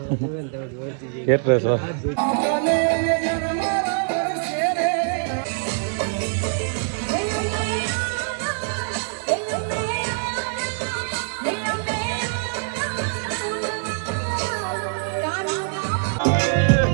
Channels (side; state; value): left; silent; digital silence